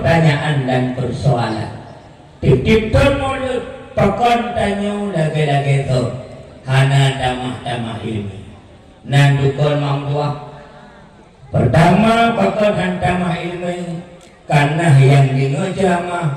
dan persoalan, tip-tipun mulut, pakon tanyo lagi-lagi tu, hana damah-damah ilmi. Nandukon mamdua. Pertama pakon hantamah ilmi, karena yang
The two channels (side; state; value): both; identical; correlation 1.00